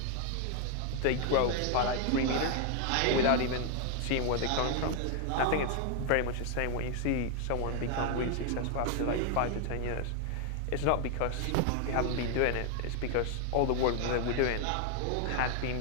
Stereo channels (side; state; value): both; different; correlation 0.00